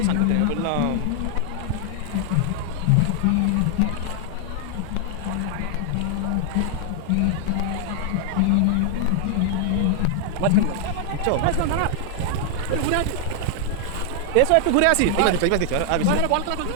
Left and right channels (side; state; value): both; different; correlation 0.00